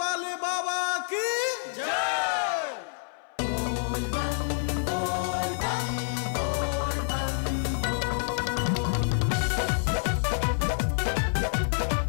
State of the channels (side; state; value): right; silent; 56 dB below the other